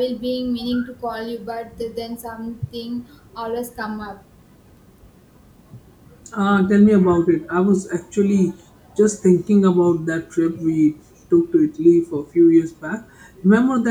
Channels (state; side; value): identical; both; correlation 1.00